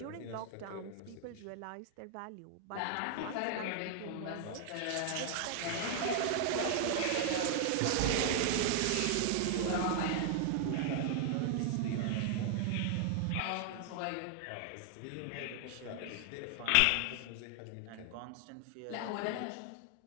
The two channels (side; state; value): both; different; correlation -0.01